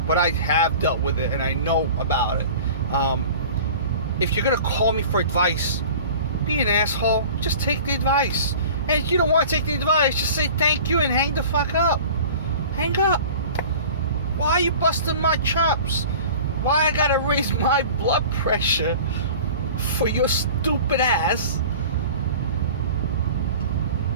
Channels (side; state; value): both; inverted; correlation -0.41